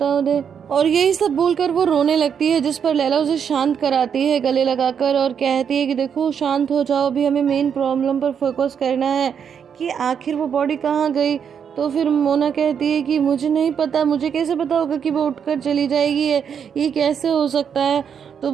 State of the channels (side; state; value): left; quieter; 7.5 dB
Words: उन्हें। और यही सब बोलकर वो रोने लगती है, जिस पर लैला उसे शांत कराती है गले लगाकर और कहती है कि देखो शांत हो जाओ, अभी हमें मेन प्रॉब्लम पर फोकस करना है कि आखिर वो बॉडी कहाँ गई। तो फिर मोना कहती है कि मुझे नहीं पता, मुझे कैसे पता होगा कि वो उठकर चली जाएगी, ये कैसे हो सकता है? तो